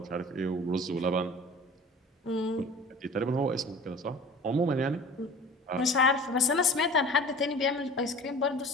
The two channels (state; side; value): normal; both; correlation 0.42